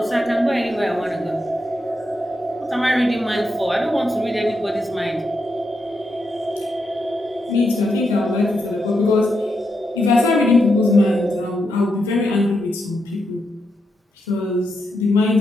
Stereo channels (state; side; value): normal; both; correlation 0.83